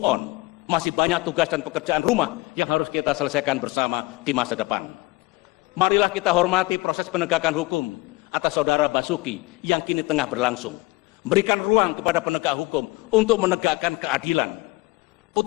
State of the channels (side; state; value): right; quieter; 22.1 dB